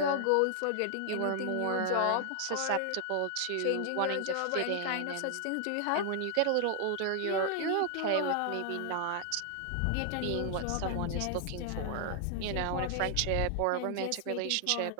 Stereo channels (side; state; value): both; different; correlation 0.00